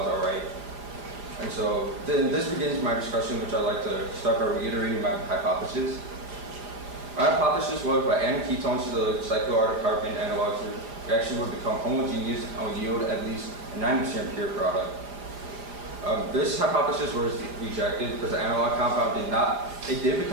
all right. And so then this begins my discussion, which I'd like to start by reiterating my hypothesis. My hypothesis was by adding ketones to the cyclooctane analogs, the reaction would become homogeneous and would yield at least a 90% pure product. This hypothesis was rejected because the analog compound did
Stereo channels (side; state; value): left; late; 4.9 ms